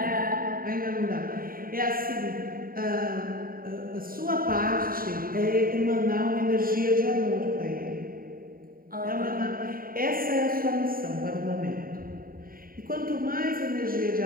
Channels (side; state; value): left; late; 0.42 ms